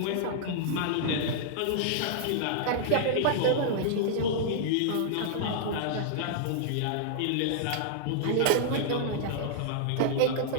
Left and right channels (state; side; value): different; both; correlation -0.01